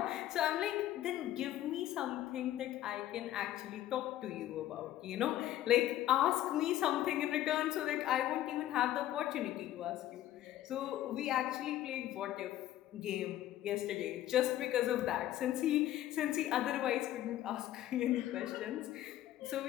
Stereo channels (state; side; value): quieter; right; 13.3 dB